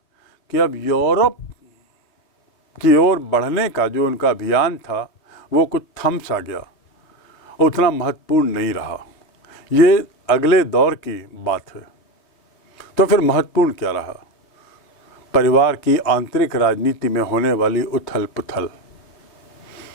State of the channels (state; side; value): late; right; 3.3 ms